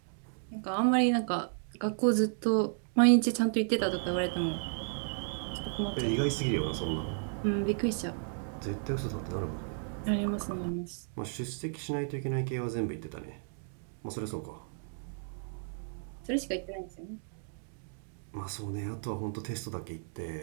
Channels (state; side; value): silent; left; digital silence